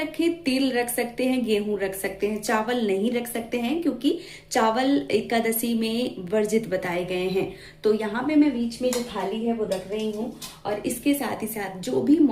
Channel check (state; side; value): identical; both; correlation 1.00